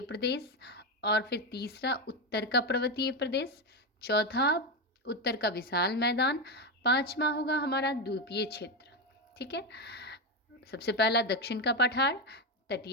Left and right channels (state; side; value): normal; both; correlation 0.11